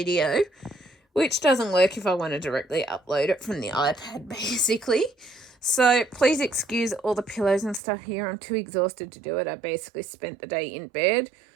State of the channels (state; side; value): drops out; left; at 7.8 s